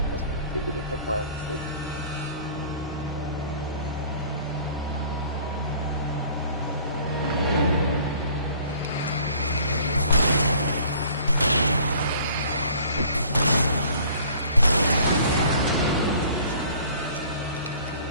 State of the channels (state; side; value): inverted; both; correlation -0.51